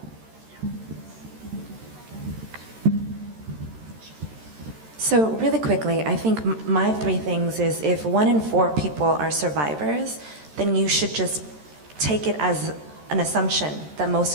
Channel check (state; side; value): late; left; 13 ms